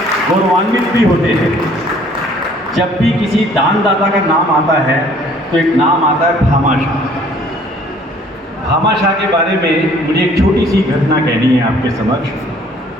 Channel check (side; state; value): both; normal; correlation 0.57